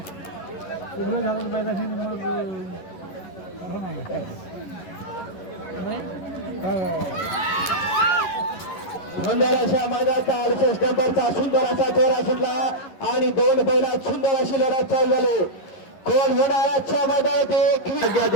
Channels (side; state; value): right; late; 11 ms